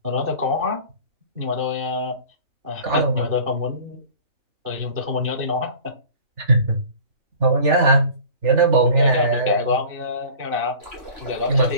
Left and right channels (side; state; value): left; late; 3.4 ms